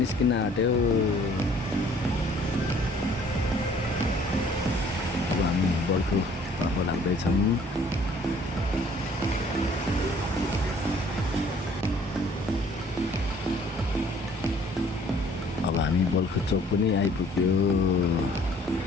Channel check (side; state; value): both; normal; correlation 0.57